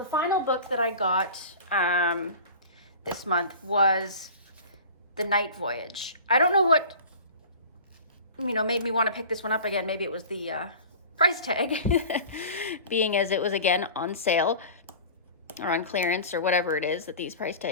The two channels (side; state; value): both; inverted; correlation -0.38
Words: final book that I got this month was The Night Voyage. I don't know what, you know, made me want to pick this one up again. Maybe it was the price tag, being as it was, again, on sale or on clearance or whatever it is that these price